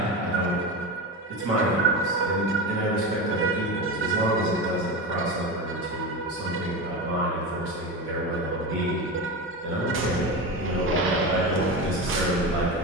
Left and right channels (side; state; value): both; normal; correlation 0.22